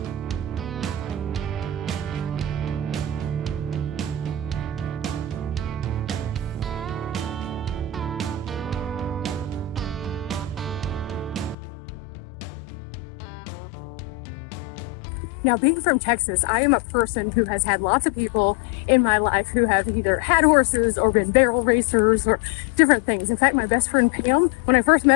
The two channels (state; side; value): drops out; right; at 11.6 s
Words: Now, being from Texas, I am a person who has had lots of people in my life who have either had horses or been barrel racers or different things. In fact, my best friend Pam, when I first